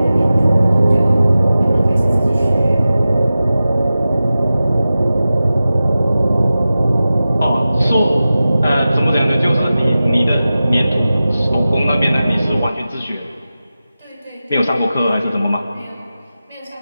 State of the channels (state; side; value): inverted; both; correlation -0.95